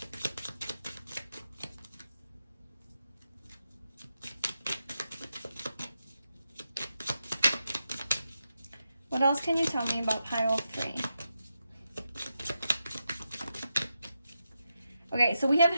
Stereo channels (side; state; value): both; inverted; correlation -0.87